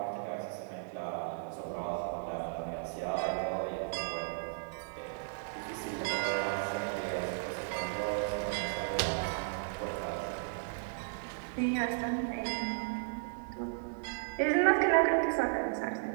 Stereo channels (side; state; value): left; silent; digital silence